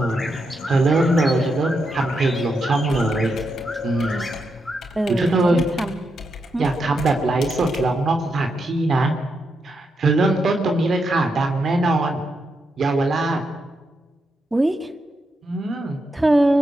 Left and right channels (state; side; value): normal; both; correlation 0.83